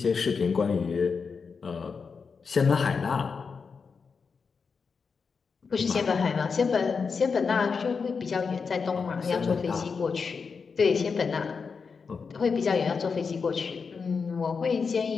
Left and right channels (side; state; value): right; quieter; 5.3 dB